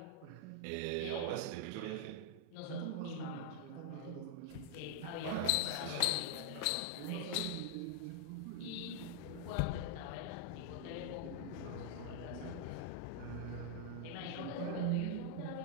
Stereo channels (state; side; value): different; both; correlation -0.01